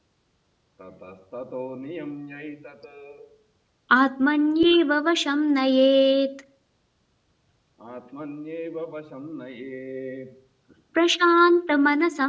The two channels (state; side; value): identical; both; correlation 1.00